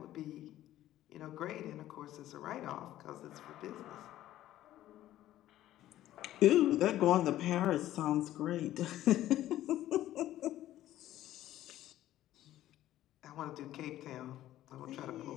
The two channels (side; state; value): right; quieter; 13.7 dB